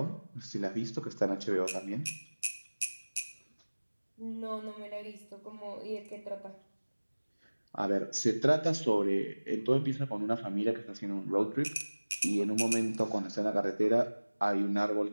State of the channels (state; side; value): inverted; both; correlation -1.00